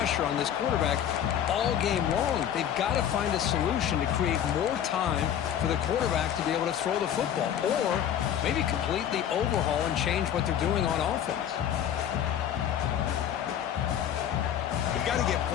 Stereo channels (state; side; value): quieter; right; 9.8 dB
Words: on this quarterback all game long. They've got to find a solution to create more time for the quarterback to be able to throw the football, or maybe completely overhaul and change what they're doing on offense. We've got to get